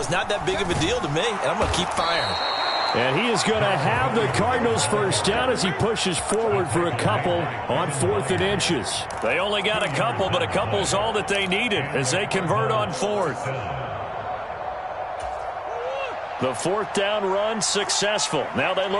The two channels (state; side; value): identical; both; correlation 1.00